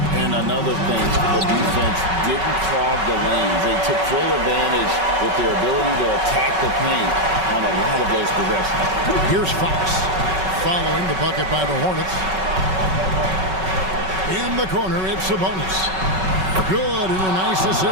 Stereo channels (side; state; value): left; late; 5.3 ms